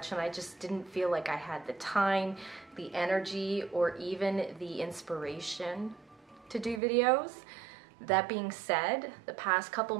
and I just didn't feel like I had the time, the energy, or even the inspiration to do videos. That being said, the past couple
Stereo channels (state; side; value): drops out; left; at 6.8 s